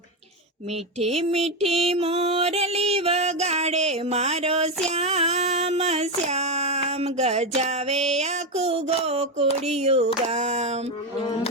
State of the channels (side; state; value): both; normal; correlation 0.11